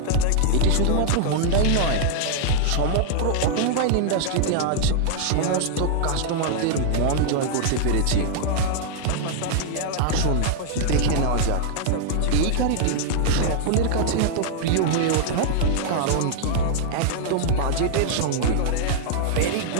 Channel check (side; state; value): both; different; correlation -0.01